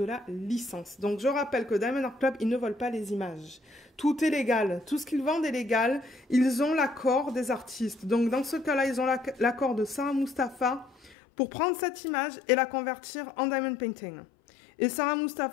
la licence. Donc, je rappelle que Diamond Art Club, ils ne volent pas les images. Tout est légal. Tout ce qu'ils vendent est légal. Ils ont l'accord des artistes. Donc, dans ce cas-là, ils ont l'accord de Sarah Mustafa pour prendre cette image et la convertir en diamond painting. Et Sarah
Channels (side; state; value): right; drops out; at 11.2 s